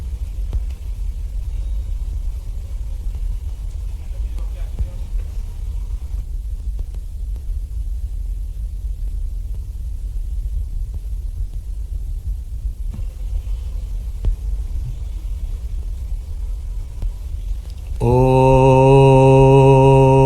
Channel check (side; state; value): both; identical; correlation 1.00